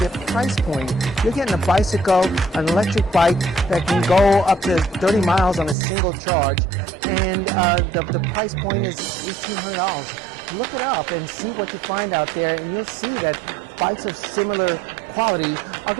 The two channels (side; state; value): left; drops out; at 5.8 s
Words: price point. You're getting a bicycle, an electric bike that can go up to 30 miles on a single charge, and the price point is $1,800. Look it up and see what you find out there, and you'll see that bikes of similar quality are